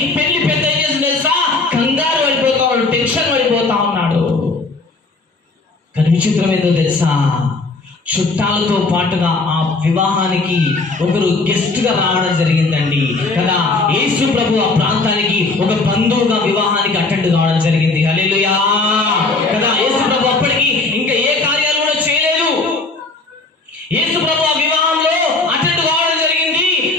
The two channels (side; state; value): right; quieter; 3.5 dB